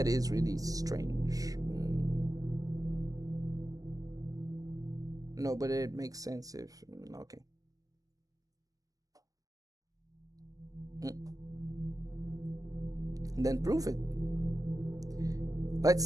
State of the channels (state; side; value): late; left; 0.17 ms